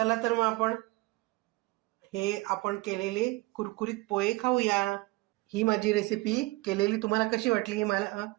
तर मग आपण केलेले कुरकुरीत पोहे खाऊया. ही माझी रेसिपी केलेली तुम्हाला कशी वाटली हे मला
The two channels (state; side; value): quieter; left; 21.9 dB